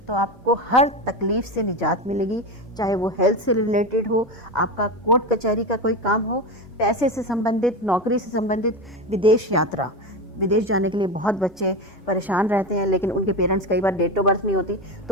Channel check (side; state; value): both; normal; correlation 0.20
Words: आपको हर तकलीफ से निजात मिलेगी, चाहे वो हेल्थ से रिलेटेड हो, आपका कोर्ट कचहरी का कोई काम हो, पैसे से संबंधित, नौकरी से संबंधित, विदेश यात्रा, विदेश जाने के लिए बहुत बच्चे परेशान रहते हैं, लेकिन उनके पेरेंट्स कई बार डेट ऑफ बर्थ नहीं होती